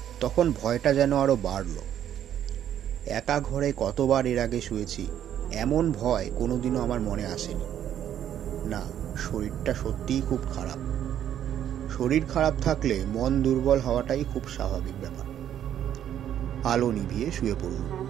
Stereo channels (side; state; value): left; quieter; 10.4 dB